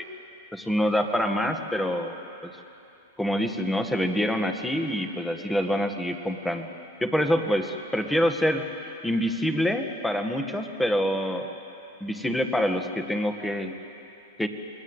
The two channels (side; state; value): both; normal; correlation 0.79